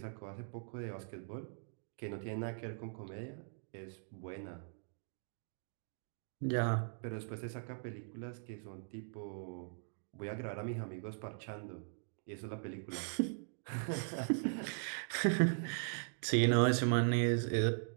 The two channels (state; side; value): silent; left; digital silence